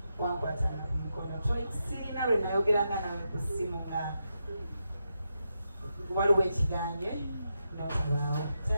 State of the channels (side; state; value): both; inverted; correlation -0.86